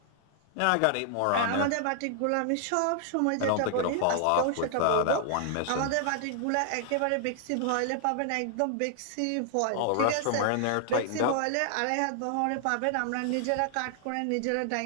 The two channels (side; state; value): both; different; correlation 0.00